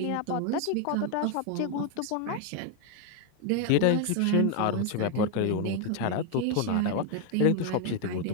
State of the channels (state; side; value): different; both; correlation 0.01